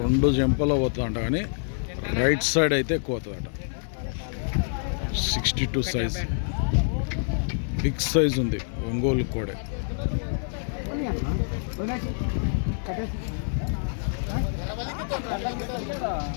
జంపలో పోతుందంట, కానీ రైట్ సైడ్ అయితే ఎక్కువ అవుతుందట. 62 సైజ్, బిగ్ సైజ్ ఉంది ఒంగోలు కోడే.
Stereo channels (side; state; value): right; silent; 60 dB below the other